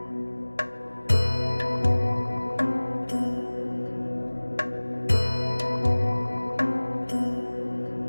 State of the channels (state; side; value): inverted; both; correlation -1.00